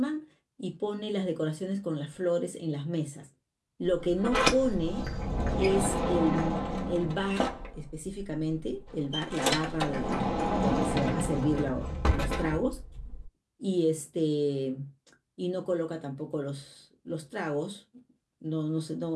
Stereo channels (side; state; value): both; identical; correlation 1.00